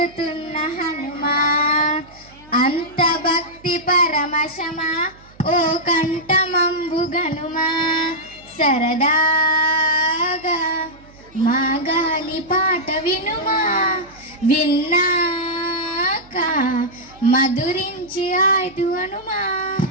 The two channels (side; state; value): right; noise; hum, 25 dB below the sound